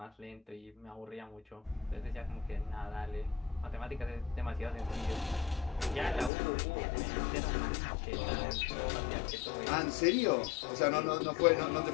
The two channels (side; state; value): right; drops out; at 6.3 s